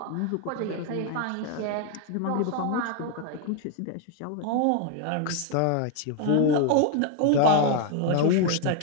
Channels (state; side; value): different; both; correlation 0.00